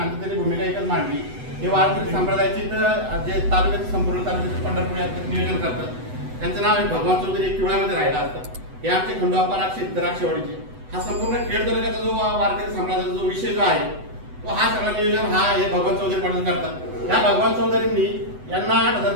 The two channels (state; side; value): late; left; 8.0 ms